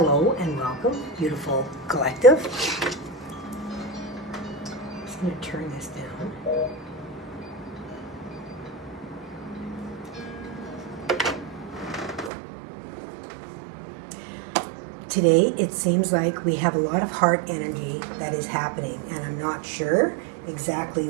and welcome, beautiful collective. I'm just going to turn this down. Today, it seems like we have a lot of heart energy that is happening, and I'm not sure exactly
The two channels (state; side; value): drops out; left; at 12.3 s